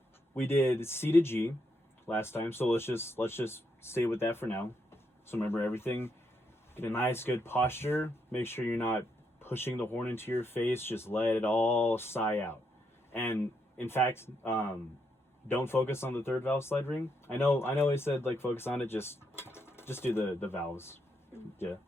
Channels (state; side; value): normal; both; correlation 0.78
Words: we did C to G last time, so let's just stay with that for now. So remember everything. Get a nice good posture. Make sure you're not pushing the horn into your face. Just let it all sigh out. And in fact, don't focus on the third valve slide ring. I know I said like focus on it, just do the valves. Yeah.